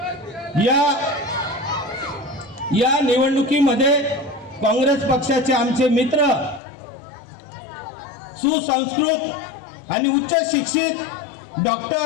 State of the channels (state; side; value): drops out; right; at 6.6 s